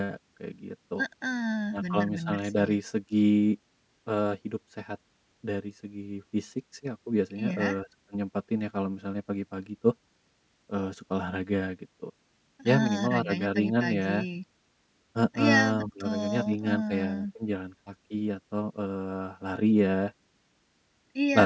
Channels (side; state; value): both; identical; correlation 1.00